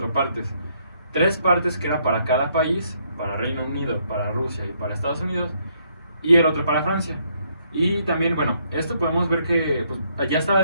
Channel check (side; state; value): both; inverted; correlation -0.71